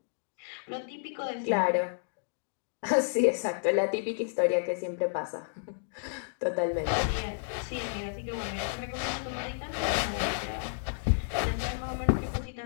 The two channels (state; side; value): silent; right; digital silence